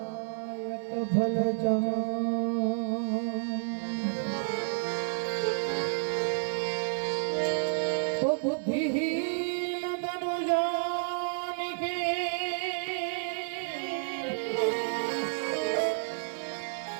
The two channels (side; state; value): left; silent; 57 dB below the other